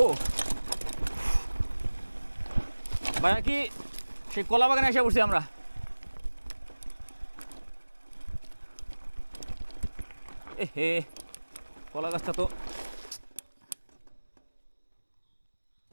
ভাইয়া কি সেই কলা বাগানে এসে পড়ছি আমরা। এ হে কলা গাছটা তো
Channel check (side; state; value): both; inverted; correlation -1.00